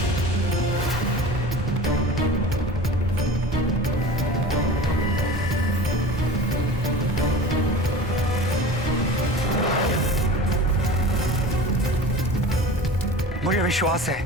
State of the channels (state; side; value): normal; both; correlation 0.36